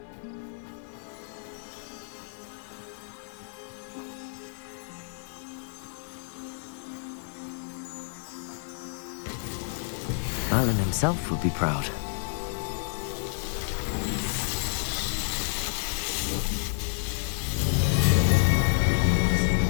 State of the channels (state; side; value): silent; right; digital silence